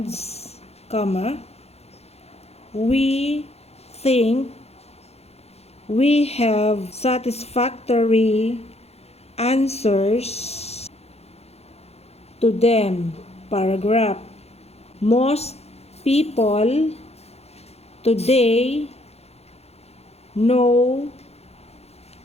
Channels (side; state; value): right; late; 0.30 ms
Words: we think we have satisfactory answers to them. Paragraph. Most people today know